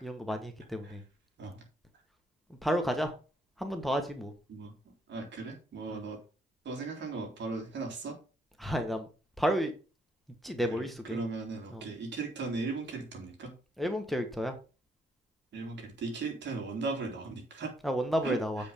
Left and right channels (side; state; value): both; normal; correlation 0.71